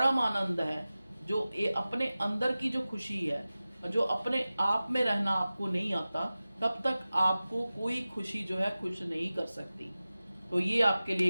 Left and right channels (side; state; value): both; inverted; correlation -0.96